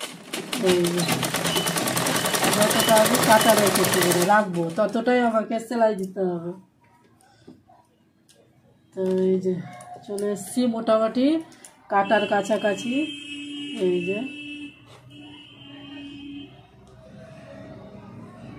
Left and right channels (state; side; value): identical; both; correlation 1.00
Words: এই যে যতটা আমি কাটা রেখেছি রাখবো, ততটাই আমাকে সেলাই দিতে হবে। তো এই যে চলে এসছি মোটামুটি কাটার কাছাকাছি। এই যে